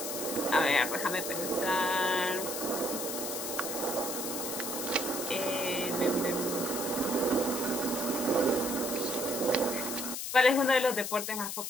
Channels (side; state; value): left; noise; hiss, 4 dB below the sound